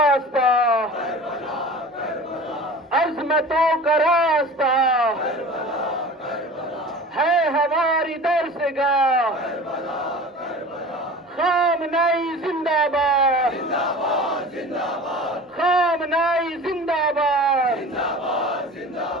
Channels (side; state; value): both; normal; correlation 0.38